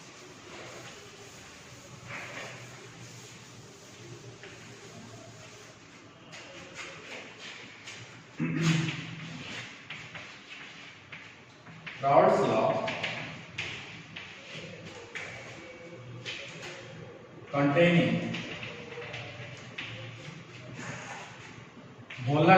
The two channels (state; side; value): identical; both; correlation 1.00